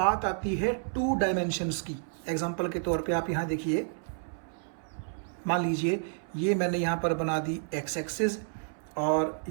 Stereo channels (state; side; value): silent; left; 58 dB below the other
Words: आती है टू डायमेंशंस की, एग्जांपल के तौर पे आप यहाँ देखिए, मान लीजिए ये मैंने यहाँ पर बना दी एक्स एक्सिस और